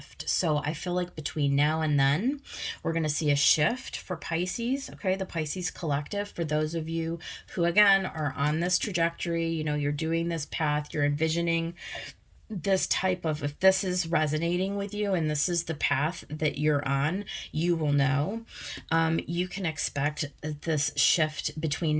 So I feel like between now and then, we're going to see a shift for Pisces, okay? The Pisces collective, for those of you who, again, are on this trajectory, you know, you're doing this path, you're envisioning this type of, if this is resonating with you and this is the path that you're on, you will know. You can expect this shift between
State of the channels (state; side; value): identical; both; correlation 1.00